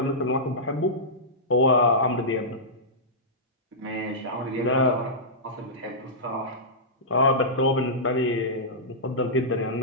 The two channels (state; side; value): normal; both; correlation -0.15